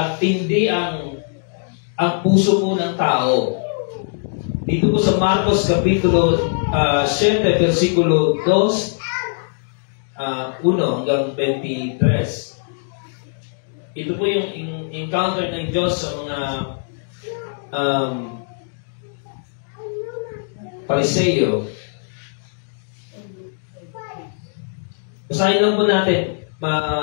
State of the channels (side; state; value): right; silent; digital silence